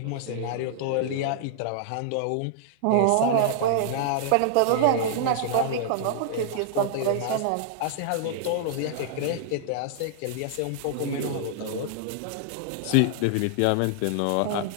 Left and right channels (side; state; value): both; different; correlation -0.01